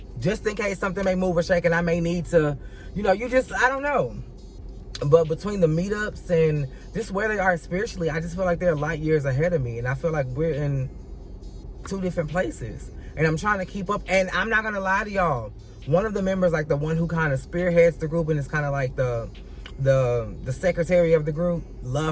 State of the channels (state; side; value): identical; both; correlation 1.00